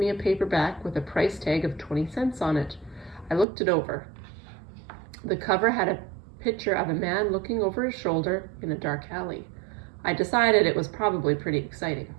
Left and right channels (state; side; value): drops out; left; at 3.5 s